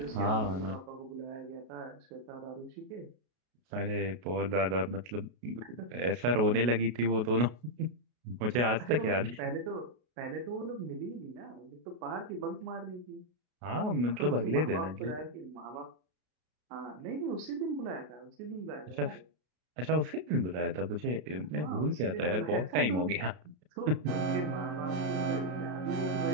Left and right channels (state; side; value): late; left; 33 ms